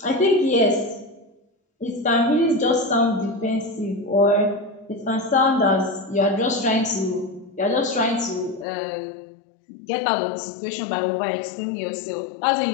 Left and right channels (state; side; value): drops out; right; at 8.7 s